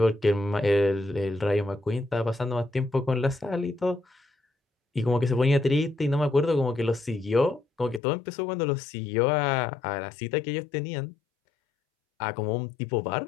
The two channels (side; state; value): right; drops out; at 8.0 s